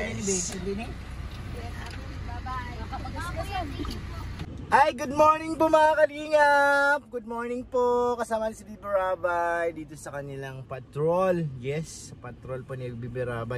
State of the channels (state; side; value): identical; both; correlation 1.00